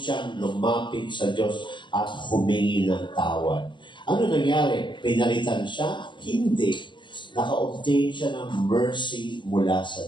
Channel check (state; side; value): late; right; 0.23 ms